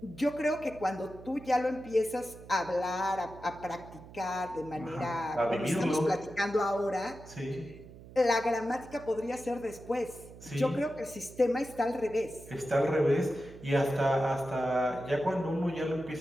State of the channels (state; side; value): noise; right; hum, 18 dB below the sound